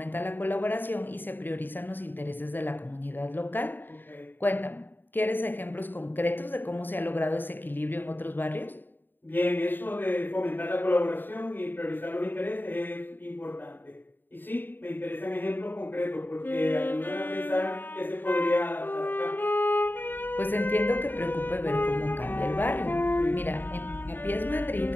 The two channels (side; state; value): right; late; 0.093 ms